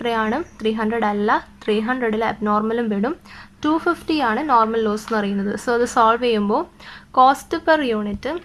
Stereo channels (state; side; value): identical; both; correlation 1.00